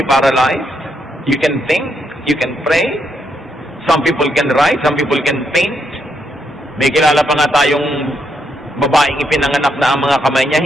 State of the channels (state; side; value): normal; both; correlation 0.78